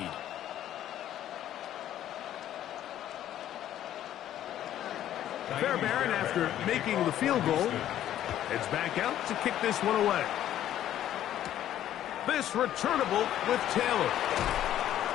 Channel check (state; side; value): quieter; right; 11.8 dB